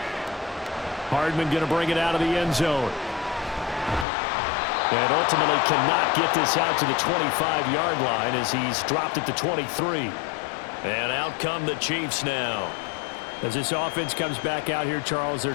Hardman going to bring it out of the end zone. And ultimately cannot get this out to the 25-yard line as he's dropped at the 23. And out come the Chiefs now. As this offense comes back out here, Charles, they're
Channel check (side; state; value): right; drops out; at 4.0 s